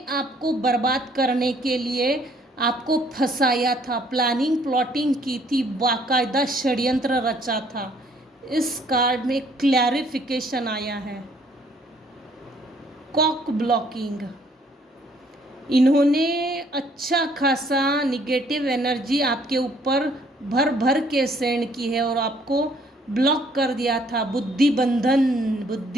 आपको बर्बाद करने के लिए आपको फंसाया था, प्लानिंग प्लॉटिंग की थी, बाकायदा षड्यंत्र रचा था। इस कार्ड में क्लैरिफिकेशन आया है। कॉक ब्लॉकिंग, इन्होंने अच्छा खासा निगेटिव एनर्जी आपके ऊपर भर भर के सेंड की है और आपको ब्लॉक कर दिया था। बुद्धि बंधन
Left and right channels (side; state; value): both; normal; correlation 0.63